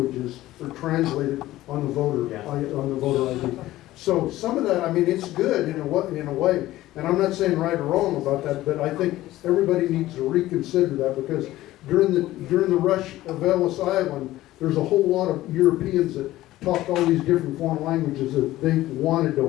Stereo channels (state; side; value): quieter; right; 15.8 dB